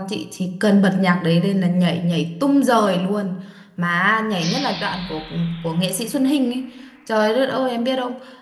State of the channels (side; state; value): both; identical; correlation 1.00